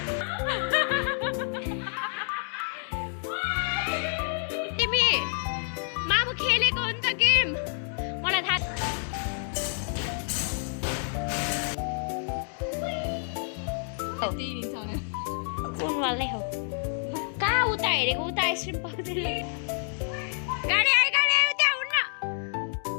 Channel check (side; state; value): right; silent; 59 dB below the other